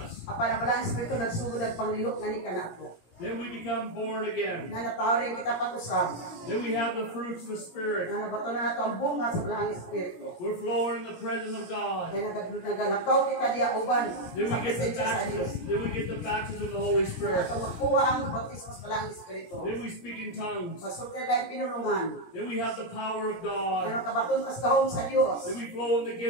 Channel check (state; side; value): late; right; 17 ms